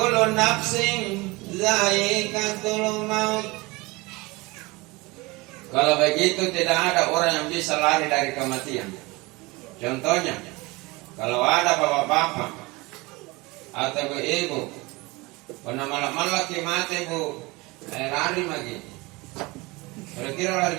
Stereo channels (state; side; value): quieter; left; 23.8 dB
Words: nafsing zaikatul maut. Kalau begitu tidak ada orang yang bisa lari dari kematian. Contohnya kalau ada bapak-bapak atau ibu pernah malam-malam lagi mati bu lari lagi. Kira-kira lari